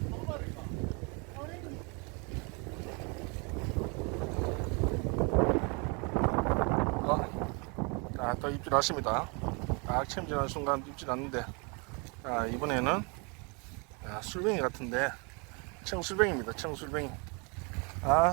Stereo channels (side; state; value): left; quieter; 32.1 dB